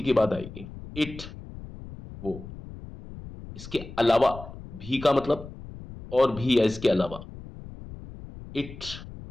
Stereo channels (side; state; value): left; noise; rumble, 14 dB below the sound